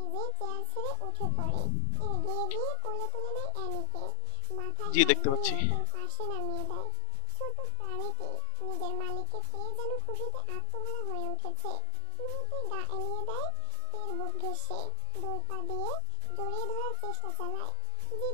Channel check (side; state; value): both; different; correlation 0.00